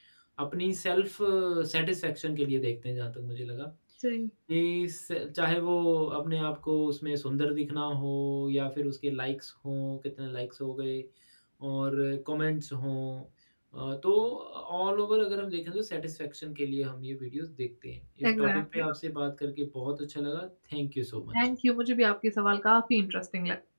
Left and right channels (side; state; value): both; inverted; correlation -1.00